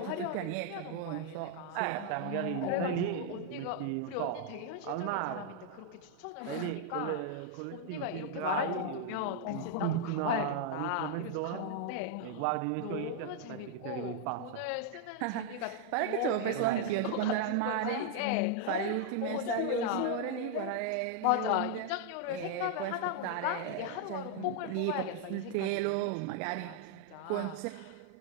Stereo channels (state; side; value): different; both; correlation 0.00